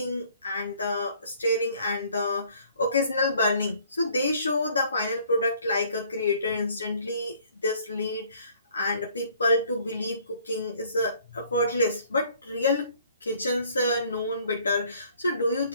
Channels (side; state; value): both; inverted; correlation -0.59